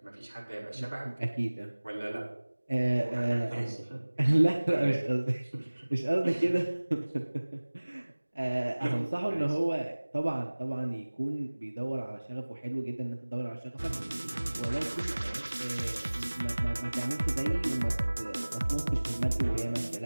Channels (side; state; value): both; inverted; correlation -1.00